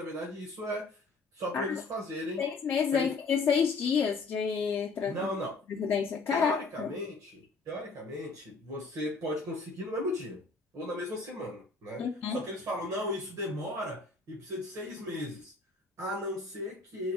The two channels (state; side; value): quieter; right; 4.0 dB